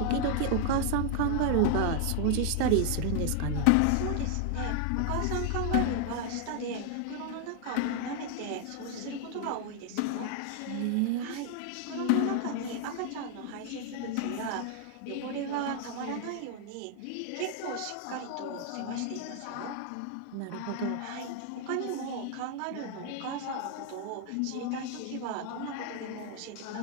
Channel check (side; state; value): both; different; correlation 0.00